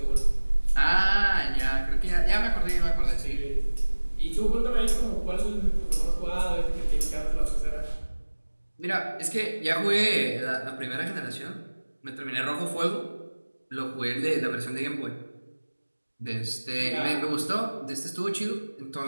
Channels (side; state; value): both; inverted; correlation -1.00